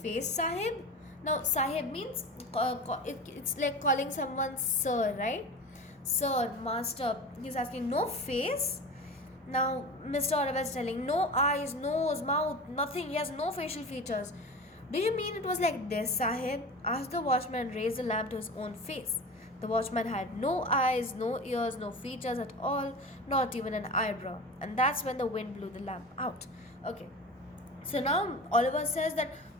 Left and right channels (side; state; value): both; normal; correlation 0.32